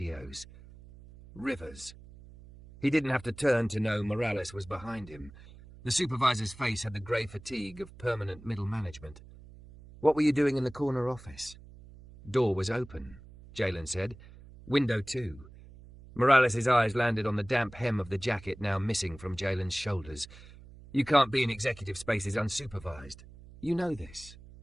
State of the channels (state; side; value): noise; right; hum, 19 dB below the sound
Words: Rivers. He didn't have to turn to know Morales was behind him. The supervisor's face had the grey fatigue of permanent middle management. "What were you doing in the corner office?" "Door was open," Jalen said. "Window too." Morales' eyes landed on the damp hem of the jacket now missing from Jalen's shoulders. "You can't be in executive spaces unsupervised. You know this."